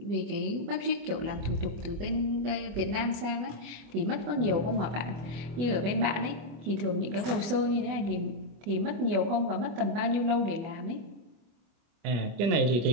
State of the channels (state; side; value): late; left; 25 ms